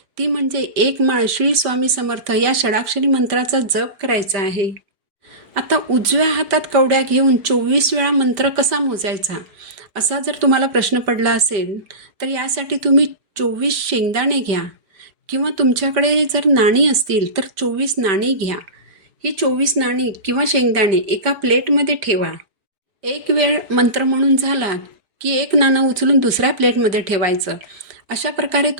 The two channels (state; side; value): late; left; 5.1 ms